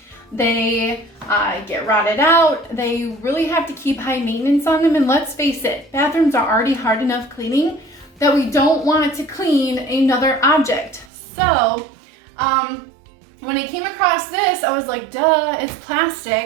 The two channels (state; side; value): drops out; left; at 11.1 s